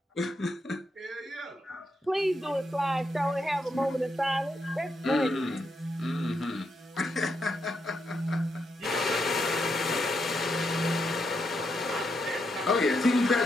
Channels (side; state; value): both; normal; correlation 0.81